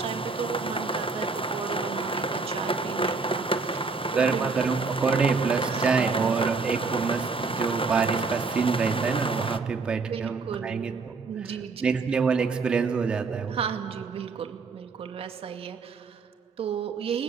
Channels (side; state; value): left; quieter; 4.4 dB